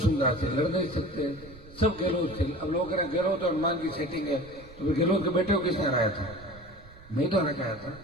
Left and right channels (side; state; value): right; noise; rumble, 20 dB below the sound